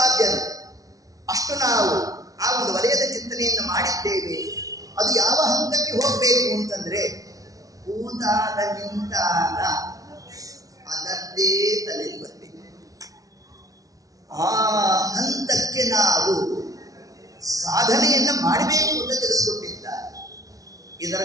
ಅಷ್ಟು ನಾವು ಆ ಒಂದು ವಲಯದ ಚಿಂತನೆಯನ್ನು ಮಾಡಿದ್ದೇವೆ. ಅದು ಯಾವ ಹಂತಕ್ಕೆ ಹೋಗಬೇಕು ಅಂತಂದ್ರೆ ಕೂತಾಗ ನಿಂತಾಗ ಅದರದ್ದೇ ತಲೆಯಲ್ಲಿ ಬರಬೇಕು. ಆ ಹಂತಕ್ಕೆ ನಾವು ಸಾಧನೆಯನ್ನು ಮಾಡಬೇಕು ಅಂತ ತಿಳಿಸ್ಕೊಟ್ಟಿದ್ದಾರೆ. ಇದರ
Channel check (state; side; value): late; left; 0.17 ms